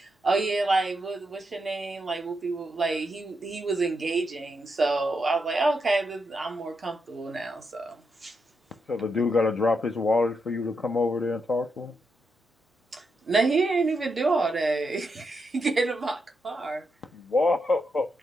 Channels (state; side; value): normal; both; correlation 0.83